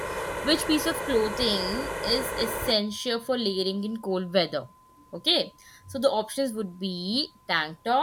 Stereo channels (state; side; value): identical; both; correlation 1.00